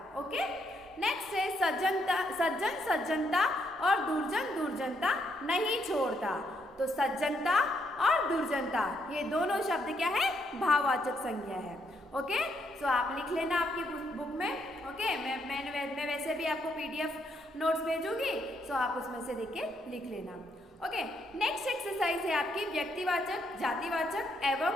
ओके, नेक्स्ट है सज्जन सज्जनता और दुर्जन दुर्जनता नहीं छोड़ता, तो सज्जनता और दुर्जनता ये दोनों शब्द क्या है, भाववाचक संज्ञा है। ओके, सो आप लिख लेना आपकी बुक में। ओके, मैं वैसे भी आपको PDF नोट्स भेजूंगी, सो आप उसमें से देख के लिख लेना। ओके, नेक्स्ट एक्सरसाइज है आपकी व्यक्तिवाचक, जातिवाचक एवं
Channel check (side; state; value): both; normal; correlation 0.75